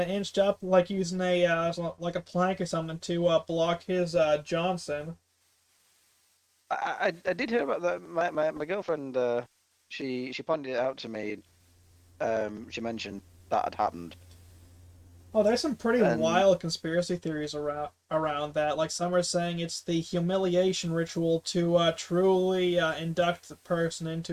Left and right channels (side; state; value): both; identical; correlation 1.00